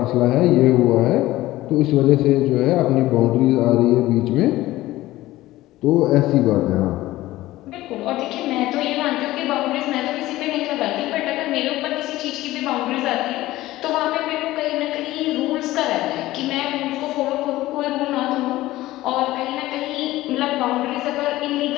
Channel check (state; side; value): quieter; right; 16.7 dB